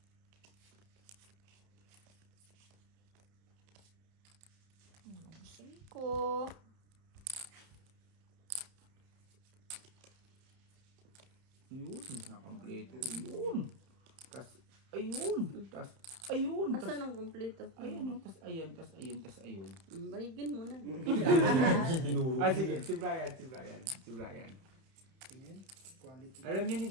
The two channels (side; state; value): left; late; 31 ms